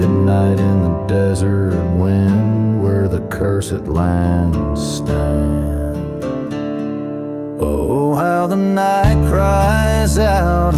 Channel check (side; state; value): both; identical; correlation 1.00